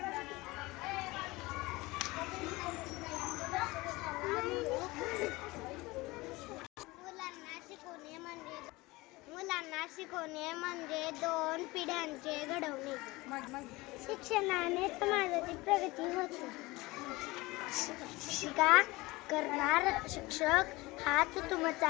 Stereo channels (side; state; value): right; quieter; 21.6 dB